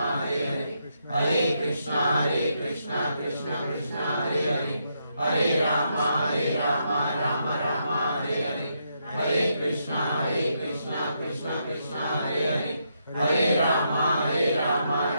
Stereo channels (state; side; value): inverted; both; correlation -0.79